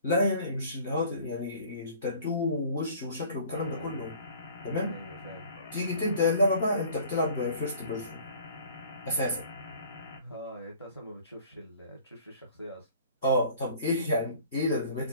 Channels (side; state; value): both; inverted; correlation -0.49